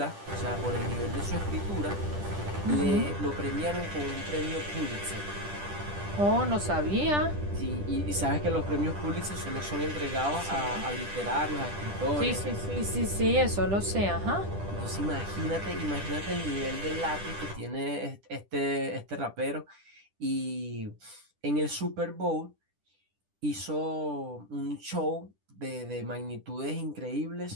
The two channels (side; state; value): left; late; 10 ms